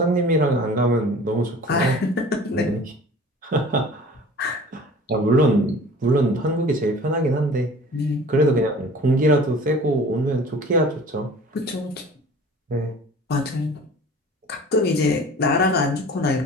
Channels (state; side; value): normal; both; correlation 0.44